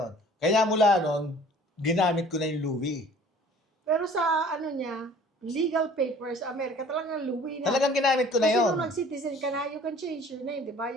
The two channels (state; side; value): normal; both; correlation 0.51